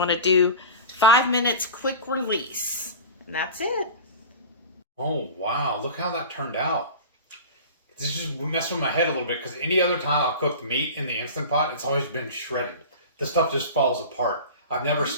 to do 5 minutes quick release. And that's it. Oh, wow. Look how that turned out. This just messed with my head a little bit because any other time I'll cook the meat in the Instant Pot, it's always been shredded. This stuff just falls apart. I've never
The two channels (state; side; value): inverted; both; correlation -0.34